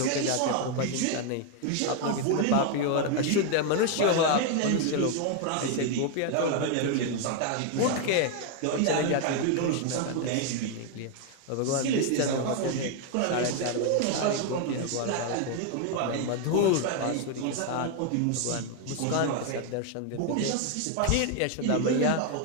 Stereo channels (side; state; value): both; different; correlation 0.01